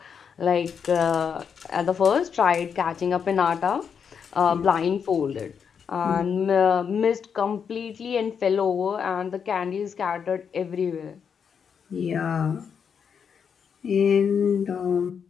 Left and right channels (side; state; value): right; quieter; 6.9 dB